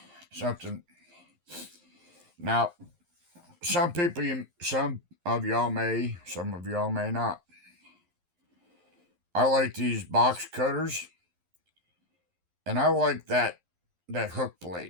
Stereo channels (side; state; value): left; late; 11 ms